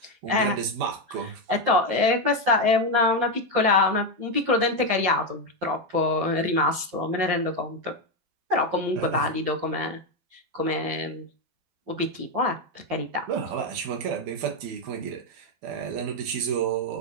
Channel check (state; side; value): late; left; 12 ms